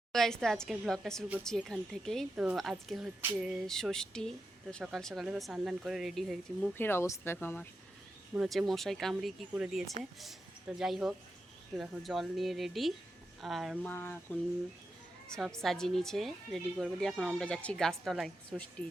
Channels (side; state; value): both; normal; correlation 0.88